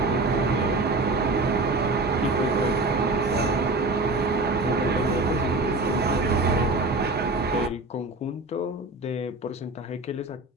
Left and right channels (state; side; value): quieter; left; 3.0 dB